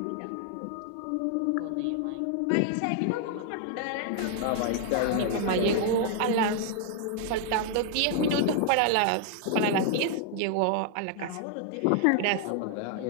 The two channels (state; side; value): different; both; correlation 0.00